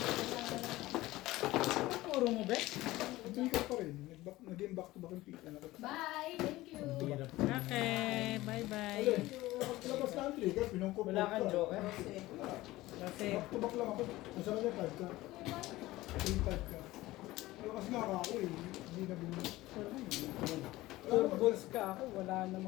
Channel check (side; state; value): right; quieter; 17.9 dB